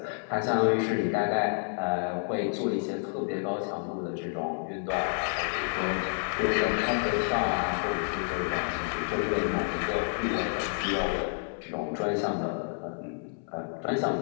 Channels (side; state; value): right; silent; 58 dB below the other